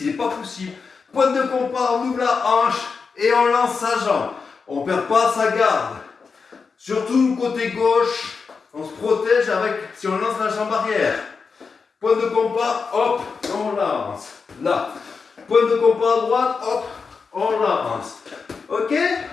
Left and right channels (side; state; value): right; quieter; 5.1 dB